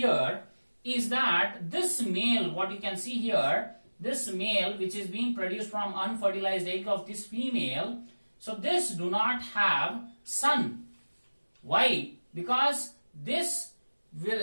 is that this male, what you can see here, this male which is being produced from unfertilized egg of this female, so this do not have son. Why? Because this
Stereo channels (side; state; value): both; inverted; correlation -1.00